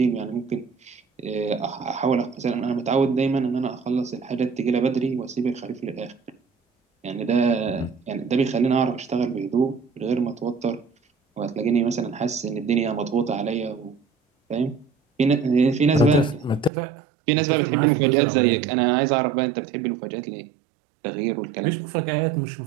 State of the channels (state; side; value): drops out; left; at 16.7 s